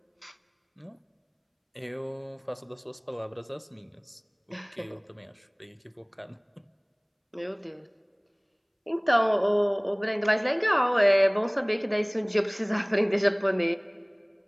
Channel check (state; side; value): identical; both; correlation 1.00